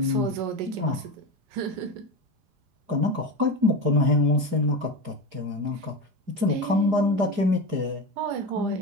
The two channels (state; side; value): late; left; 4.9 ms